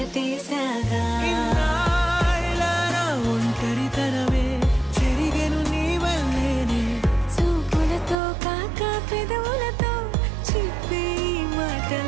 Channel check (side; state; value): left; drops out; at 8.2 s